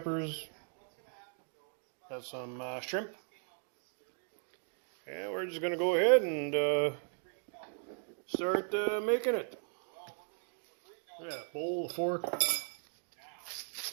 got some shrimp. And we're just going to go ahead and start making it. Yeah, bowl, a fork.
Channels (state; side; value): silent; left; 53 dB below the other